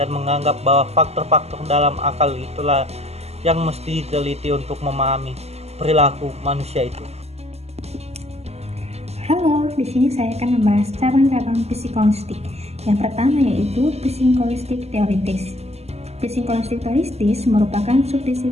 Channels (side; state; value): left; late; 0.30 ms